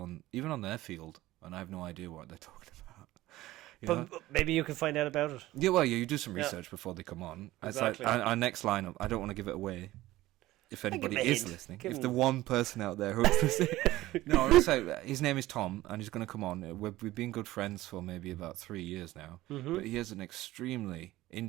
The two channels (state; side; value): quieter; left; 16.8 dB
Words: even on their field, and I have no idea what they're talking about. But maybe you can find out about it. Yeah, well, you do some Yeah. research before they come on. Exactly. It's like our next lineup. I don't want to give it away. If anybody give 'em a is hint. listening, Give if 'em- the one person out there who's listening, no, so his name is Tom, and he's going to come on. We've been good friends for maybe about 3 years now, Mm-hmm. but he has an extremely